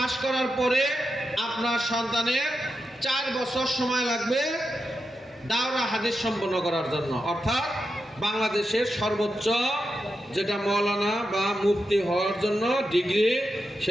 করার পরে আপনার সন্তানের 4 বছর সময় লাগবে দাওরা হাদিস সম্পন্ন করার জন্য, অর্থাৎ বাংলাদেশের সর্বোচ্চ যেটা মৌলানা বা মুফতি হওয়ার জন্য ডিগ্রি,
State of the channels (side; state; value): both; normal; correlation 0.88